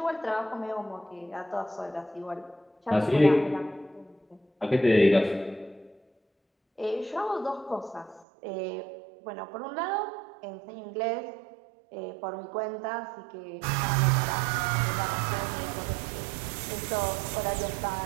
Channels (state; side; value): drops out; left; at 8.2 s